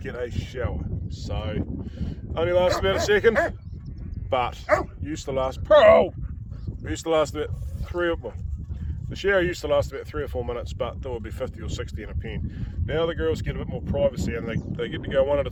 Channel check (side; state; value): both; identical; correlation 1.00